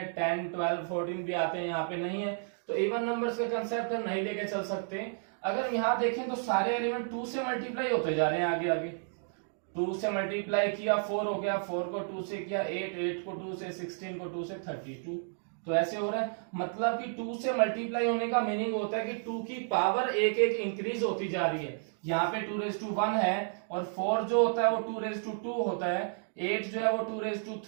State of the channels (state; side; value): silent; left; digital silence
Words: 10 12 14 भी आते हैं, यहाँ पे नहीं है। तो इवन नंबर्स का कंसेप्ट हम नहीं लेके चल सकते। अगर यहाँ देखें तो सारे एलिमेंट 2 से मल्टीप्लाई होते जा रहे हैं, आगे आगे 2 से मल्टीप्लाई किया 4 हो गया, 4 को 2 से किया 8, 8 को 2 से 16 को 2 से 32। तो ऐसे हो रहा है, मतलब कि 2 से मल्टीप्लाई होने का मीनिंग होता है कि 2 की पावर एक एक इंक्रीज होती जा रही है। यहाँ पे 2⁻1 है, और 4 जो होता है वो 2⁻2 होता है, 8 जो है वो